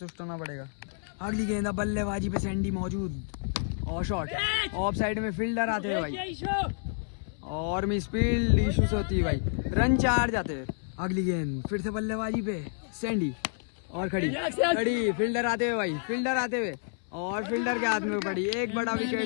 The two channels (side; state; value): right; silent; 58 dB below the other